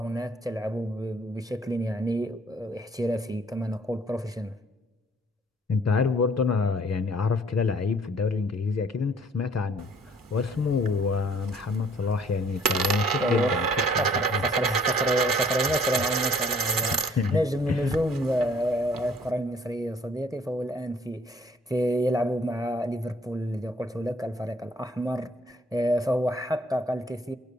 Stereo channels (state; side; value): normal; both; correlation 0.59